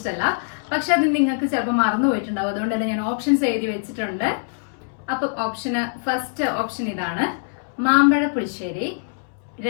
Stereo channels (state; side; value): silent; right; 63 dB below the other